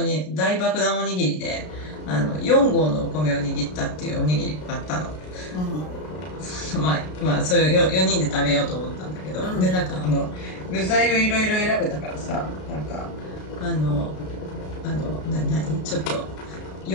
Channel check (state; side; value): late; right; 33 ms